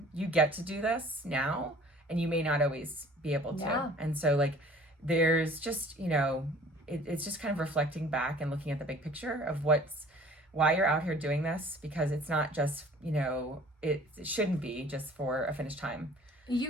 you get to do this now, and you may not always be able to. And so, like, there's just, it's just kind of reflecting back and looking at the big picture of why you're out here doing this, because it's not just, it shouldn't be just for a finish time.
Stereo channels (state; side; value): normal; both; correlation 0.50